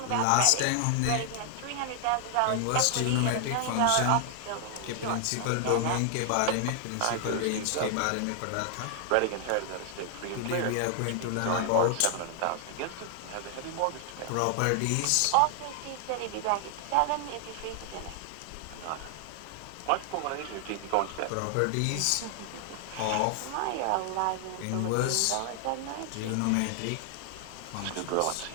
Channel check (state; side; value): different; both; correlation 0.00